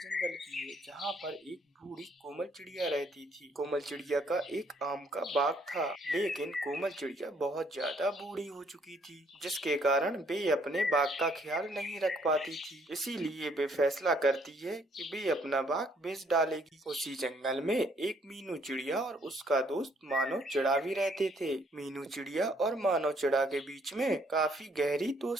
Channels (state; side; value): normal; both; correlation 0.67